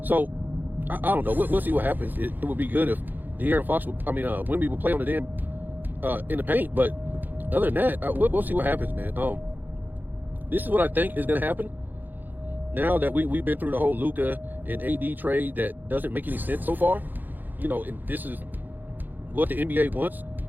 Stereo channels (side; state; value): left; late; 0.088 ms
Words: So I don't know. We'll see what happens. It would be good if De'Aaron Fox, Wemby would play on the damn in the paint. But other than that, we'll see what happens, man. This is what I think is going to happen. Now that we've been through the whole Luka and AD trade that doesn't make any sense so far, and this is what the NBA wants,